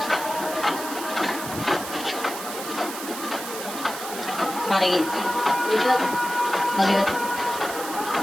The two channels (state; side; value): noise; right; hiss, 9 dB below the sound